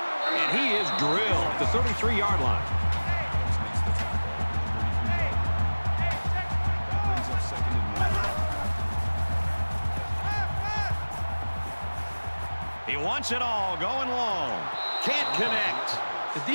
And he is drilled at the 33-yard line. That brings up 2nd and 1. He wants it all, going long. Can't connect. The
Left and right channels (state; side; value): inverted; both; correlation -1.00